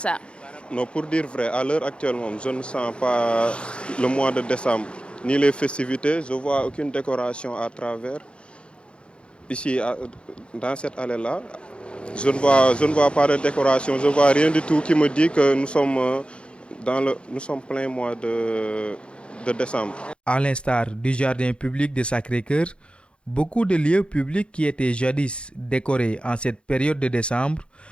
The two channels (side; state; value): right; late; 0.057 ms